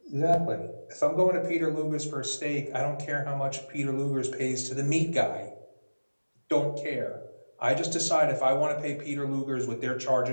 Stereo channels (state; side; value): inverted; both; correlation -1.00